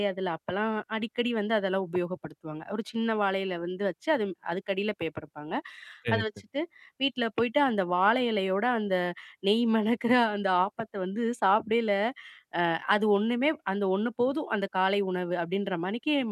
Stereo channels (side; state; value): both; identical; correlation 1.00